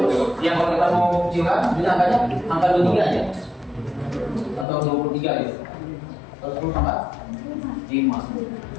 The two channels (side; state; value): right; drops out; at 4.7 s